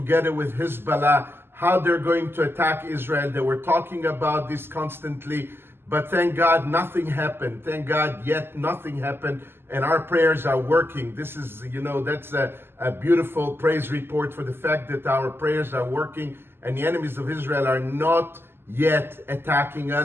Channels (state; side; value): late; left; 0.11 ms